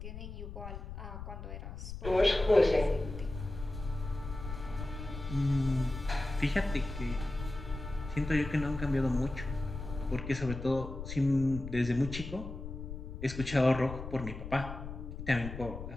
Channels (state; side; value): noise; left; rumble, 9 dB below the sound